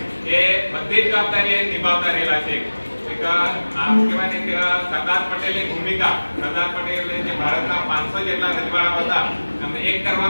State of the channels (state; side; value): inverted; both; correlation -1.00